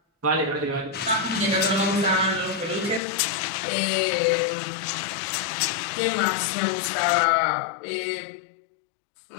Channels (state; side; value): drops out; right; at 3.0 s